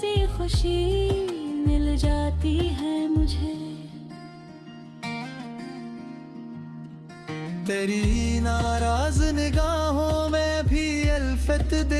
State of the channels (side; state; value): both; identical; correlation 1.00